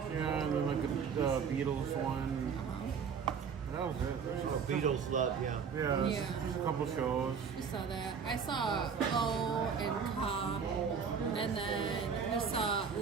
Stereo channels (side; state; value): left; quieter; 6.4 dB